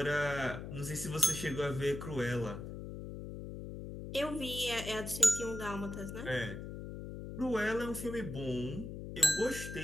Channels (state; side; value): noise; left; hum, 8 dB below the sound